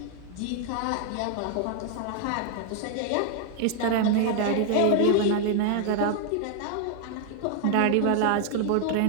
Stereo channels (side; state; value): both; different; correlation 0.00